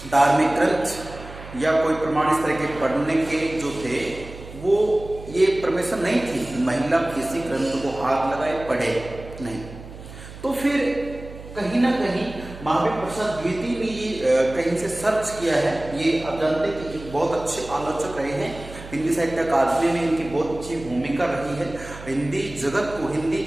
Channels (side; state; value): right; noise; hum, 15 dB below the sound